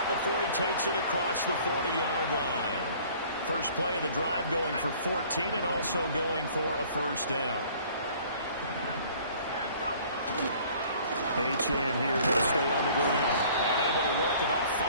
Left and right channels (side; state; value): both; inverted; correlation -0.53